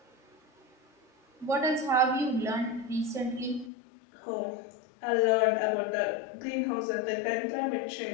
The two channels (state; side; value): drops out; right; at 3.7 s